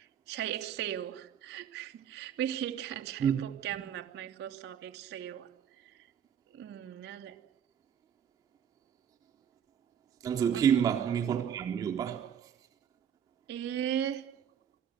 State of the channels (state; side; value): quieter; left; 8.6 dB